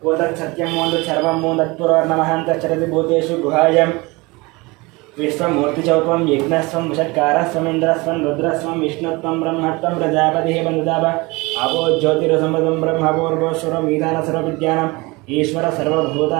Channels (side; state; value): left; quieter; 24.3 dB